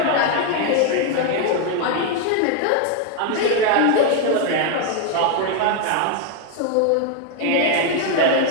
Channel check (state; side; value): different; both; correlation 0.01